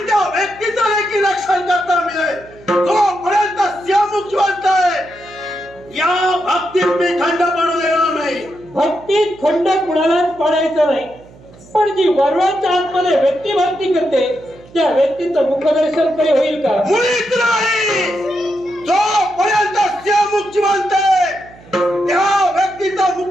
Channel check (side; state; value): right; noise; hum, 23 dB below the sound